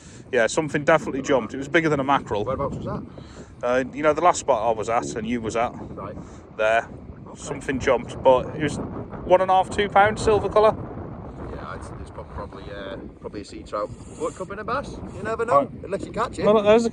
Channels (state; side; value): identical; both; correlation 1.00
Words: Yeah, something definitely jumped. It was bigger than a mackerel. Whereabouts was that? You know, the last spot I was at and you was at, Right. there, okay. Something jumped, but it was £1.5, £2 silver colour. Yeah, it's probably a sea trout. What, could be a bass? You never know, unless you catch it. Well, there's the